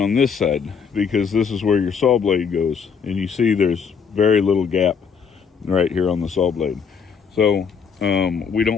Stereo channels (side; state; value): right; quieter; 6.3 dB